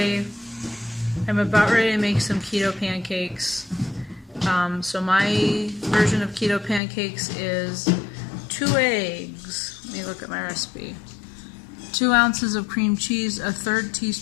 I'm about ready to make some keto pancakes. So my version of keto pancakes is 2 eggs. Let me look at my recipe. 2 ounces of cream cheese, a 1/3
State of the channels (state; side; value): drops out; right; at 6.8 s